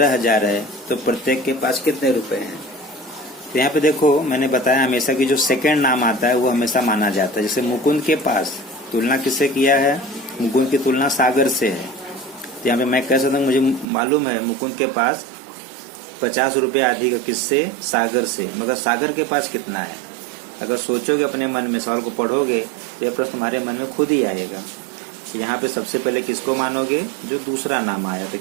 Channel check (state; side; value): drops out; left; at 13.9 s